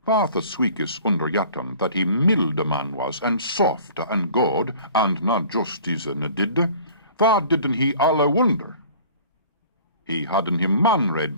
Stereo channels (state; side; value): inverted; both; correlation -0.48